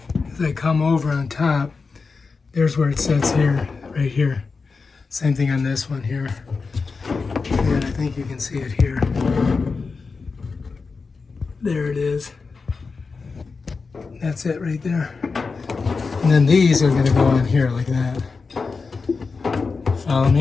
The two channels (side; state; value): right; quieter; 4.6 dB